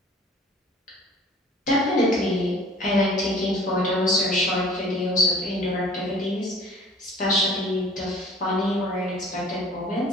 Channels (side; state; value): both; normal; correlation 0.49